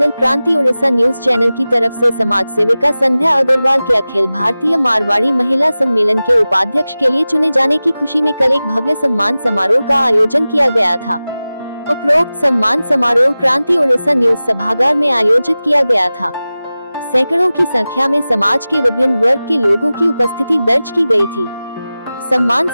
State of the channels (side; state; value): both; inverted; correlation -0.96